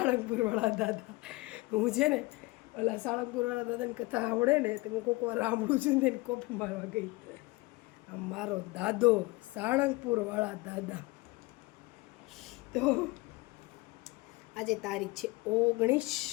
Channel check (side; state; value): right; quieter; 22.8 dB